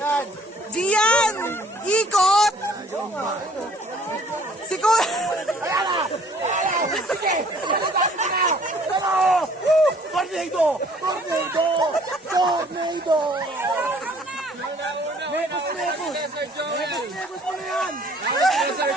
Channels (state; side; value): normal; both; correlation 0.58